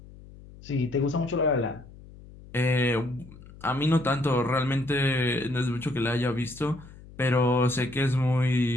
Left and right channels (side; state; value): left; noise; hum, 19 dB below the sound